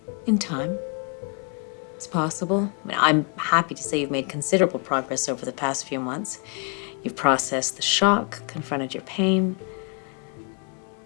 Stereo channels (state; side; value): quieter; right; 38.2 dB